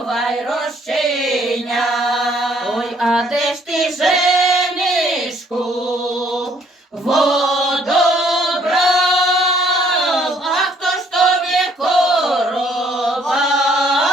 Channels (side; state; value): both; normal; correlation 0.64